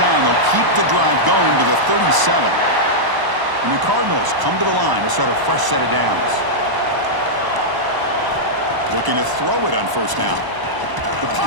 they'll keep the drive going to the 37. And the Cardinals come to the line to start a fresh set of downs. Looking to throw it on first down. The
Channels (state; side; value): late; left; 1.0 ms